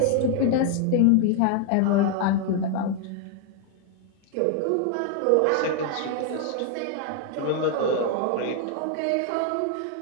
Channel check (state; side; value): different; both; correlation 0.00